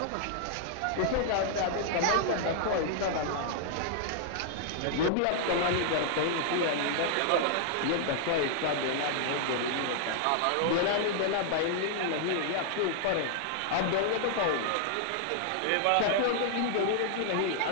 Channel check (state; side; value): different; both; correlation -0.01